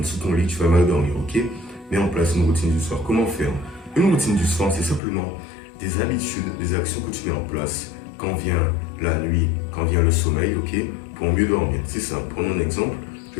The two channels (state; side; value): drops out; right; at 5.0 s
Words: sous ton lit, tu vas mal dormir, ok? Mets en place une routine du soir. Comment faire? Une routine du soir, c'est simplement des habitudes, des actions que tu mets en place quand vient la nuit, quand vient le sommeil, ok? Pour mieux dormir. C'est simple. Prenons un exemple.